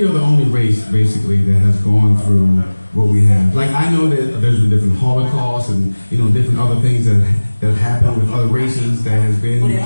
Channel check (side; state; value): both; inverted; correlation -1.00